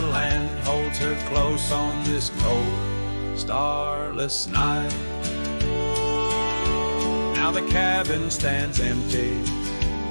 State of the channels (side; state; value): both; inverted; correlation -1.00